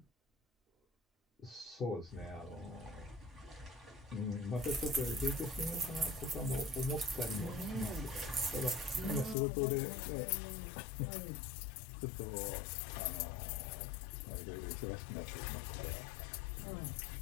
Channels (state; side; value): drops out; right; at 9.3 s